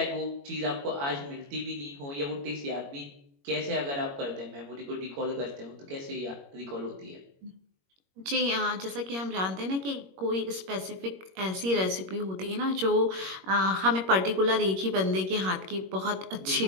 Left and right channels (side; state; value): left; late; 21 ms